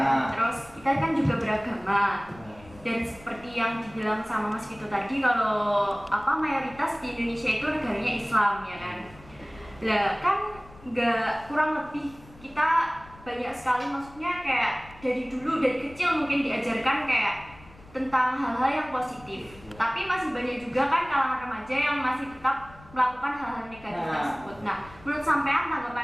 Terus kita kan juga beragama. Dan seperti yang dibilang sama Mas Vito tadi, kalau mayoritas di Indonesia itu negaranya Islam ya kan. Lah kan nggak, kurang lebih kita banyak sekali, maksudnya kayak dari kecil mungkin diajarkan kayak tentang hal-hal yang positif. Tapi masih banyak juga kan kalangan remaja yang masih tetap melakukan hal-hal negatif tersebut. Nah, menurut sampean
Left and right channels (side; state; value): left; noise; rumble, 22 dB below the sound